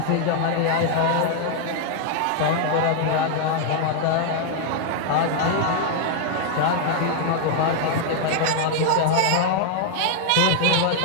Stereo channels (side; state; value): both; different; correlation 0.00